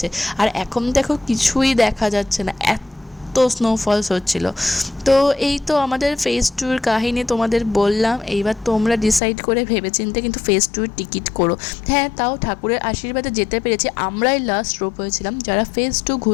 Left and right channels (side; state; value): right; drops out; at 9.2 s